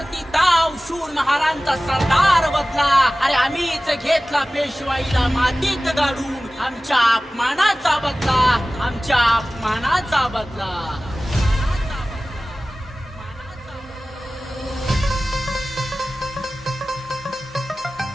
ताव शूर महाराजांचा सरदार बदला। अरे आम्हीच घेतला पेशवाईला मातीत गाडून, आमच्या अपमानाचा बदला, आमच्या अपमानाचा बदला।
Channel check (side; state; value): both; normal; correlation 0.97